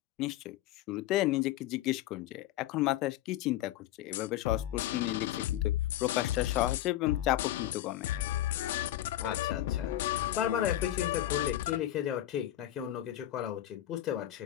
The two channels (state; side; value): quieter; right; 13.6 dB